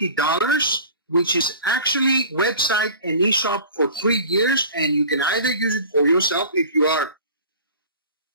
which is actually website and e-shop for 3 years, and you can either use it for yourself if you are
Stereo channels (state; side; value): inverted; both; correlation -0.42